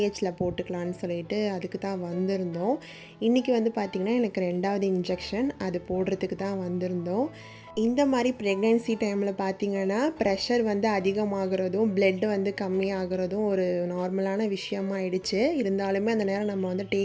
போட்டுக்கலான்னு சொல்லிட்டு அதுக்கு தான் வந்திருந்தோம். இன்றைக்கி வந்து பார்த்திங்கன்னா எனக்கு 2வது இன்ஜெக்ஷன் அது போடுறதுக்கு தான் வந்திருந்தோம். இந்த மாதிரி ப்ரெக்னென்சி டைமில் பார்த்திங்கன்னா ப்ரெஷர் வந்து அதிகமாகிறதும் பிளட் வந்து கம்மியாகிறதும் ஒரு நார்மலான விஷயமாயிடுச்சு. இருந்தாலுமே அந்த நேரம் நம்ம வந்து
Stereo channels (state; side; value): identical; both; correlation 1.00